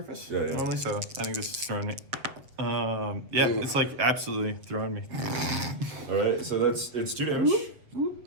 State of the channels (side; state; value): left; late; 7.5 ms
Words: Yeah, yeah. normally, so I think this is throwing me. Yeah, Ooh. it's like absolutely throwing me. All right. So it's 2 damage,